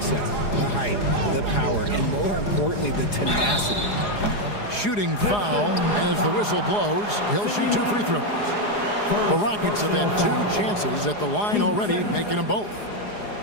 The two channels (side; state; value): right; late; 4.8 ms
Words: The height, the power, and more importantly, the tenacity. Shooting foul as the whistle blows. He'll shoot 2 free throws. The Rockets have had 2 chances at the line already, making them both.